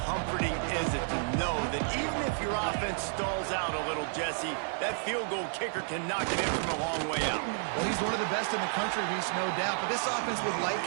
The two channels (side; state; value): left; silent; 57 dB below the other